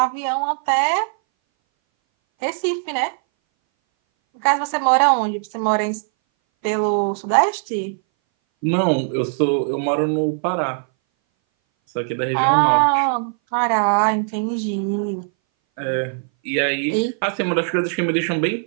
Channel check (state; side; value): silent; left; 60 dB below the other